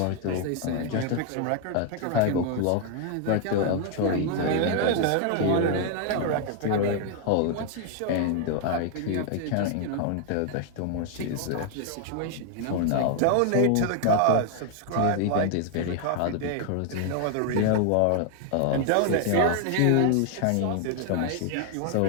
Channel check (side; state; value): both; different; correlation 0.00